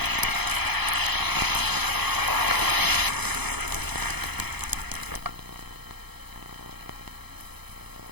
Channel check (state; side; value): late; left; 0.98 ms